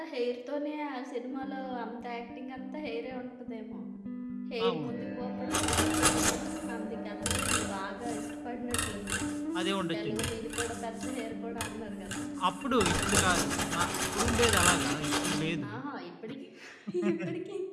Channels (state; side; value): identical; both; correlation 1.00